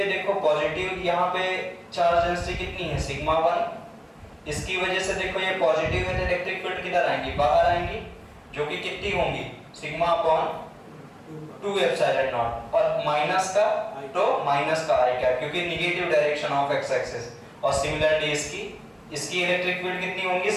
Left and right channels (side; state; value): both; identical; correlation 1.00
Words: देखो पॉजिटिव, यहाँ पे चार्ज डेंसिटी कितनी है, सिग्मा 1, इसकी वजह से देखो ये पॉजिटिव है, इलेक्ट्रिक फील्ड किधर आएंगी, बाहर आएंगी, जो कि कितनी होंगी, सिग्मा अपॉन 2 एप्सिलॉन नॉट, और माइनस का तो माइनस का आई कैप, क्योंकि negative direction of X axis, और सिमिलरली इसकी इलेक्ट्रिक फील्ड कितनी होंगी,